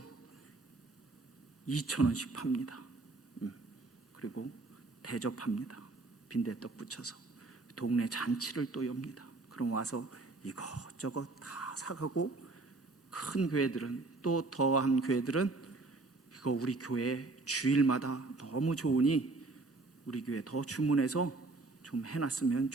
2,000원씩 팝니다. 그리고 대접합니다. 빈대떡 붙여서 동네 잔치를 또 엽니다. 그럼 와서 이것저것 다 사가고 큰 교회들은 또 더한 교회들은 이거 우리 교회 주일마다 너무 좋으니 우리 교회 더 주문해서 좀 해놨으면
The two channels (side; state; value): left; quieter; 3.4 dB